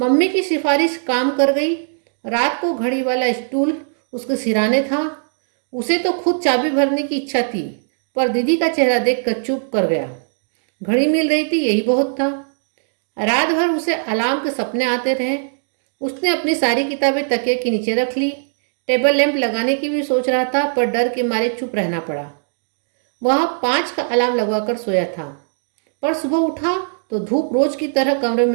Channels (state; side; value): silent; left; digital silence